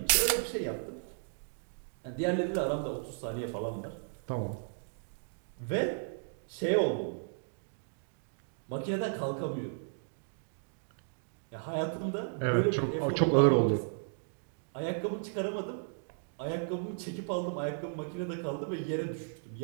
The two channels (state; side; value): silent; left; digital silence